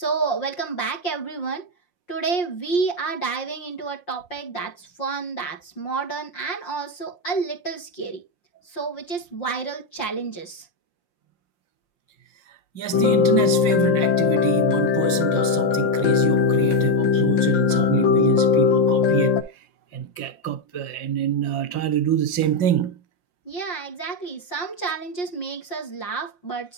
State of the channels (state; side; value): late; right; 5.6 ms